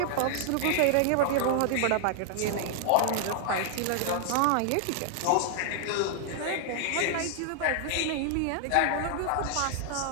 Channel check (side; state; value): both; different; correlation 0.00